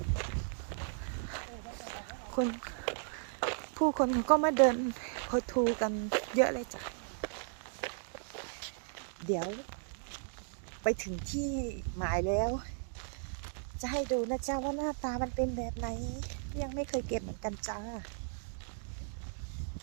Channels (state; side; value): silent; left; digital silence